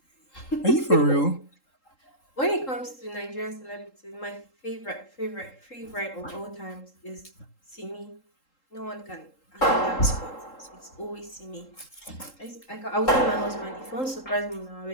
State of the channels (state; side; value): late; right; 3.8 ms